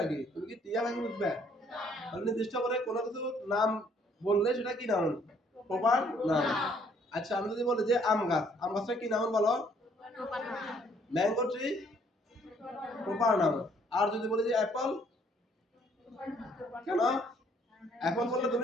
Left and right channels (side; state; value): both; normal; correlation 0.64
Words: তুমি কি টিয়া পাখি বুঝবে? তাহলে নির্দিষ্ট করে কোনো কিছু নাম বললে সেটা কি নাউন? Proper noun. আচ্ছা, আমি যদি বলি যে আম গাছ, আম গাছটা কি নাউন বলো? Mango tree, proper noun. আর যদি বলি যে অ্যাপল, কেন? অ্যাপল বললে